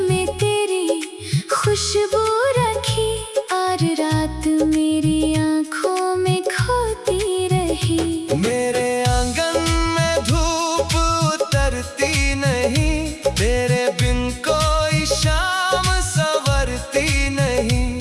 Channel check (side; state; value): both; identical; correlation 1.00